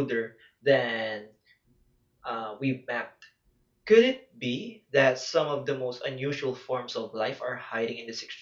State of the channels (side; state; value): both; identical; correlation 1.00